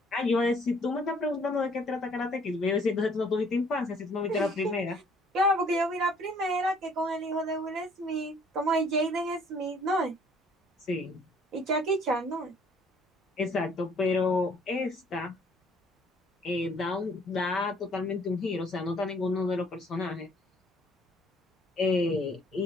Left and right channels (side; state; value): both; normal; correlation 0.60